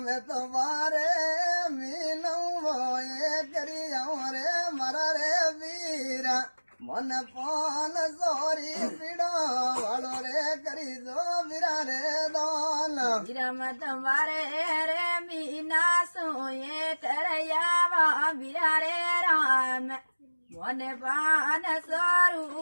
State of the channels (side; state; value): both; inverted; correlation -1.00